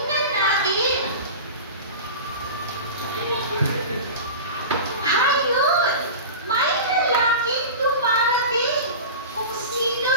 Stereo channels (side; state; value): both; inverted; correlation -0.31